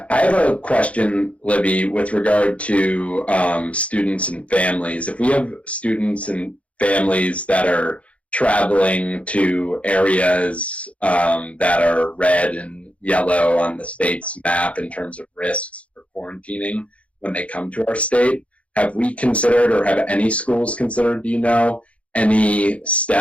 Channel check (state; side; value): late; right; 0.063 ms